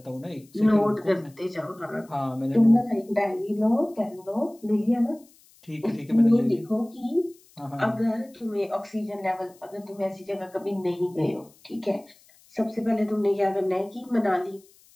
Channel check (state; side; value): noise; left; hiss, 28 dB below the sound